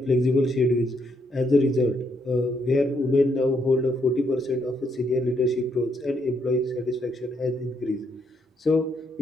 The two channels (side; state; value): both; normal; correlation 0.75